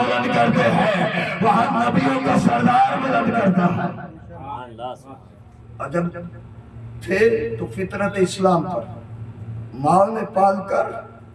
کرتے ہیں، وہاں نبیوں کا سردار بلند کرتا ہے۔ عجب تھے تو فطرت اسلام پر ماں نے پال کر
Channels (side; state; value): both; identical; correlation 1.00